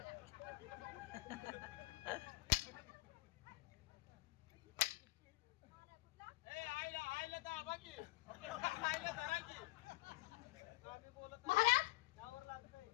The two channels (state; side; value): quieter; right; 21.8 dB